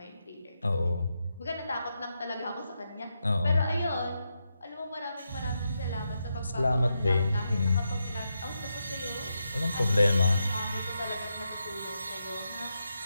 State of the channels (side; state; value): both; inverted; correlation -0.85